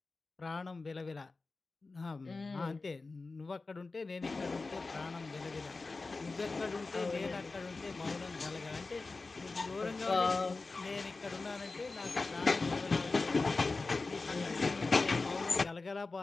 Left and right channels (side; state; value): right; quieter; 3.7 dB